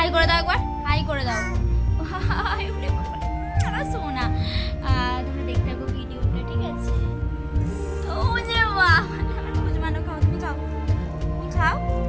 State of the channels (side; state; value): both; identical; correlation 1.00